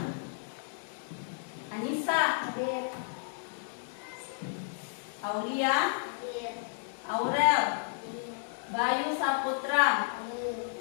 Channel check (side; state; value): right; silent; digital silence